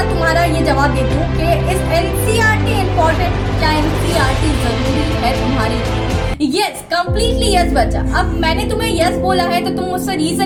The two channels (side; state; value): both; identical; correlation 1.00